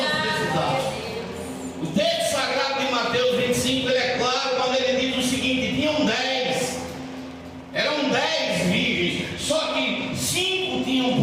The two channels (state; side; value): identical; both; correlation 1.00